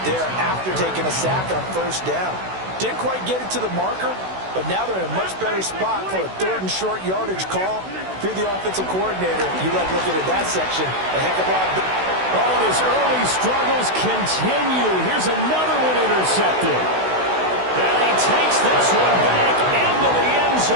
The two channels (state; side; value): late; left; 16 ms